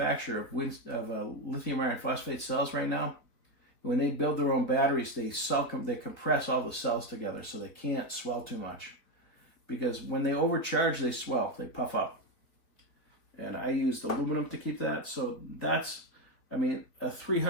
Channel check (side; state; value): right; late; 4.2 ms